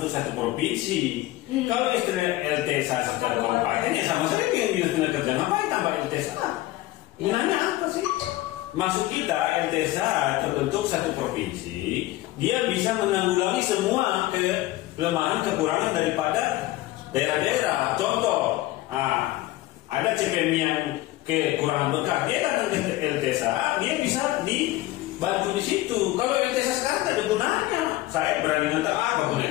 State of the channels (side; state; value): right; quieter; 17.1 dB